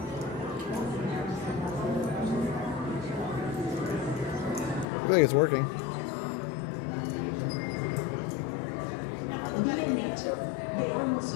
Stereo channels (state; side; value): drops out; right; at 4.9 s